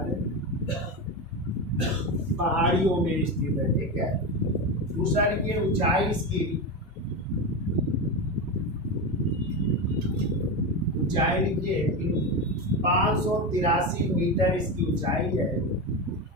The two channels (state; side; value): normal; both; correlation 0.17